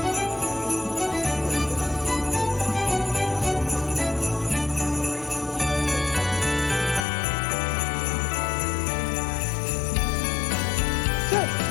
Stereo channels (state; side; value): drops out; right; at 7.1 s